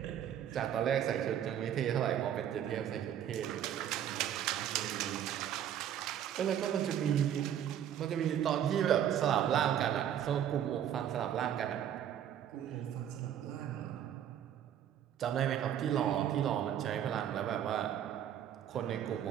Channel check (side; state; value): left; quieter; 10.1 dB